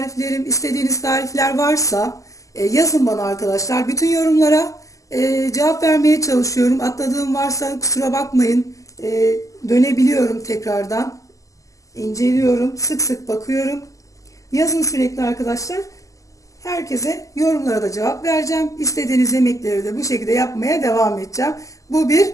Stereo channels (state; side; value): late; right; 0.16 ms